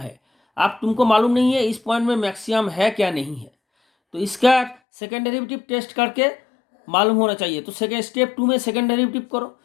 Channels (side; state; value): right; drops out; at 4.8 s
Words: आप तुमको मालूम नहीं है इस पॉइंट में मैक्सिमम है क्या नहीं है, तो इसका सेकेंड डेरिवेटिव टेस्ट करके मालूम होना चाहिए। तो सेकेंड स्टेप 2 में सेकेंड डेरिवेटिव करो,